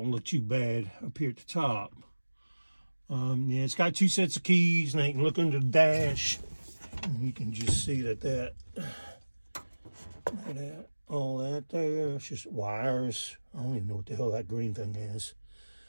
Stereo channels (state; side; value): inverted; both; correlation -1.00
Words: look too bad up here at the top. Yeah, it's got 2 sets of keys, and I can look under the dash, and you can just see that look at that. All that there, it's just wires. I don't even know what the hell that green thing is.